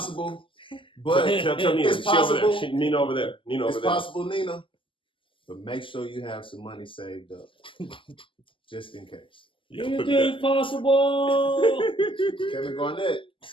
but tell Nina. It's possible. Nina over there. It's possible, Nina. But make sure you have some money saved up, just in case. Anything possible. Kevin Garnett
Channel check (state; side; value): late; right; 0.25 ms